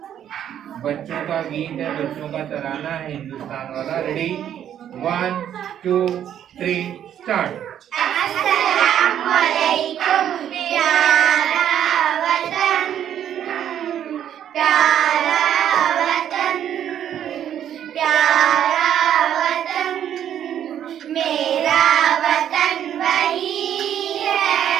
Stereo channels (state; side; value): quieter; left; 10.1 dB